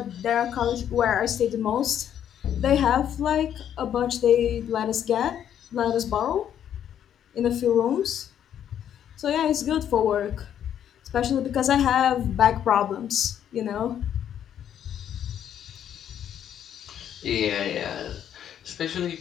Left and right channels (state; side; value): quieter; right; 9.8 dB